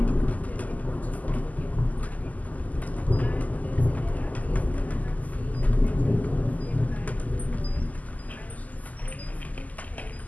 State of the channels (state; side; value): late; right; 0.077 ms